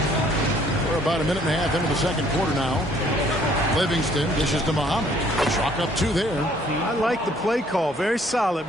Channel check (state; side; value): normal; both; correlation 0.61